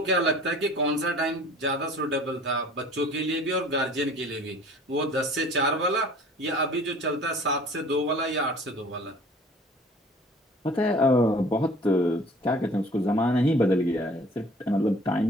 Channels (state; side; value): normal; both; correlation 0.49